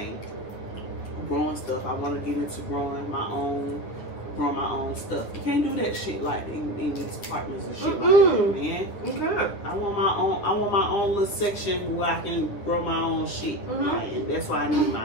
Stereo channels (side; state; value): right; late; 10 ms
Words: Growing stuff. I want to get into growing my own grow my own stuff. You can't do that shit like in these apartments and shit like that, man. Okay. I want my own little section where I can grow my own shit. Like, and that's why I